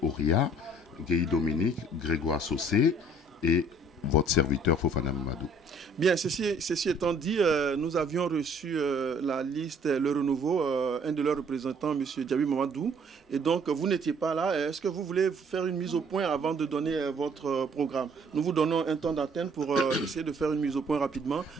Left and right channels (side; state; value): both; normal; correlation 0.59